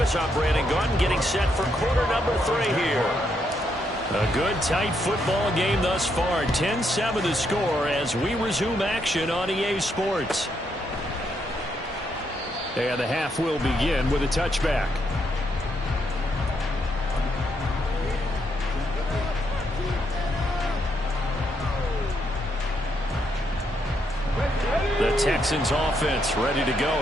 I'm Brandon Gunn, getting set for quarter number 3 here. A good, tight football game thus far. 10-7 the score as we resume action on EA Sports. And the half will begin with a touchback. The Texans offense ready to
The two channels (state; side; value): normal; both; correlation 0.77